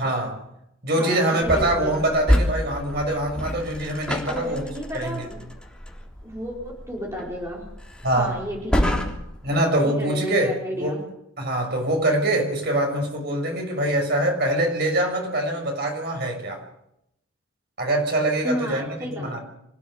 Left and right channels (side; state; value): both; normal; correlation 0.26